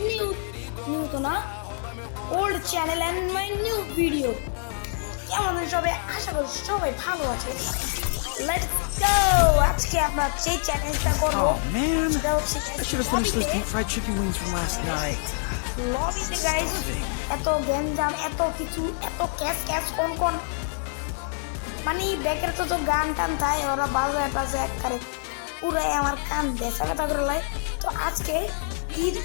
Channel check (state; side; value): silent; right; 61 dB below the other